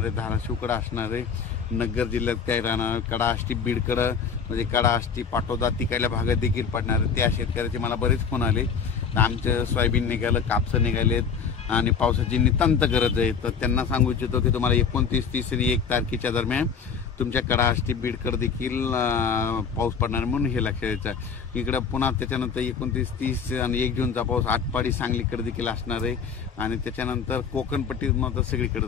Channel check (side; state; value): right; quieter; 6.2 dB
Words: धाराशिवकडे असणार आहे, नगर जिल्ह्यात काय राहणार, कडा आष्टी बीडकडे म्हणजे कडा आष्टी पाटोदा तिकडल्या भागात देखील पडणार आहे। त्या शेतकऱ्याचे मला बरेच फोन आले, आमचं सोयाबीन निघालं, कापसं निघालेत आणि पावसाची नितांत गरज आहे। तर त्यांना सांगू इच्छितो की तुम्हाला 29, 30 आणि 1 तारखेच्या दरम्यान तुमच्या कडा आष्टी बीडकडे देखील पाऊस पडणार, म्हणून हे लक्षात घ्यायचं। इकडं पुन्हा त्याच्यानंतर 29, 30 आणि 1 जूनचा पाऊस आटपाडी सांगलीकडे देखील असणार आहे आणि त्याच्यानंतर कोकणपट्टीत मात्र